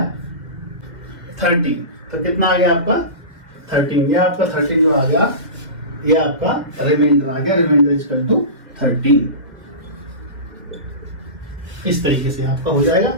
30। तो कितना आ गया आपका? 13। ये आपका 13 जो आ गया, ये आपका रिमाइंडर आ गया। Remainder equal to 13। इस तरीके से आपका हो जाएगा।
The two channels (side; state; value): left; late; 2.1 ms